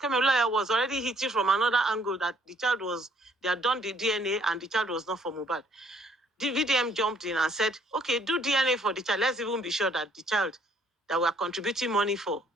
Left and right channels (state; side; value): normal; both; correlation 0.64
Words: lawyer was already hitting from another angle that the child was, they had done the DNA and the child was not for Mohbad. The VDM jumped in and said, okay, do DNA for the child. Let's even be sure that the child that we're contributing money for